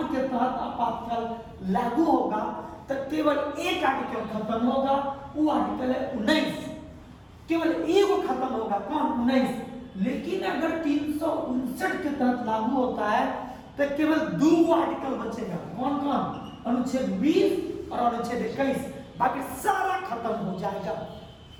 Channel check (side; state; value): both; identical; correlation 1.00